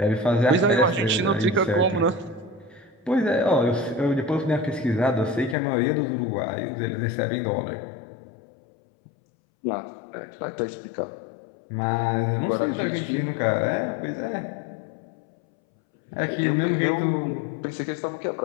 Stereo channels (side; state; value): right; drops out; at 5.6 s